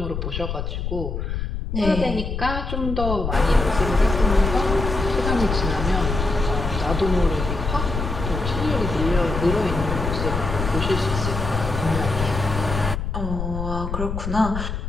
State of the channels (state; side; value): noise; left; rumble, 4 dB below the sound